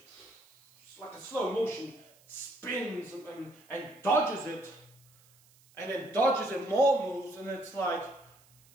like a slow motion, spins and dodges it. And then dodges it more moves, and it's like,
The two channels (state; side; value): noise; right; hiss, 29 dB below the sound